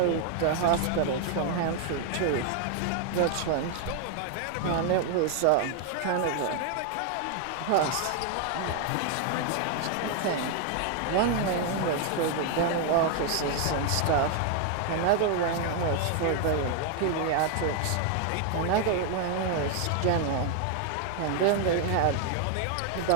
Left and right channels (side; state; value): both; different; correlation 0.00